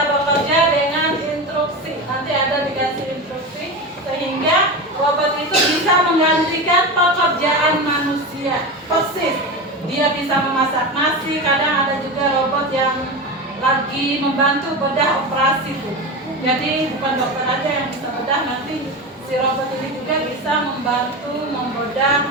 bekerja dengan instruksi. Nanti ada dikasih instruksi sehingga robot itu bisa menggantikan pekerjaan manusia. Persis. Dia bisa memasak nasi. Kadang ada juga robot yang lagi membantu bedah operasi tuh. Jadi bukan dokter aja yang bisa bedah, nanti si robot ini juga bisa membantu membedah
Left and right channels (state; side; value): normal; both; correlation 0.22